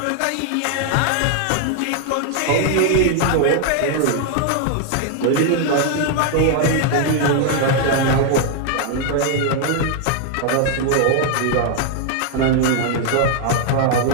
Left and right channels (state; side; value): different; both; correlation 0.00